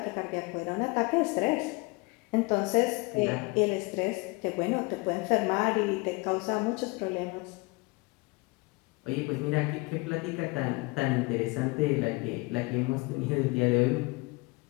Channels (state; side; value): quieter; right; 26.0 dB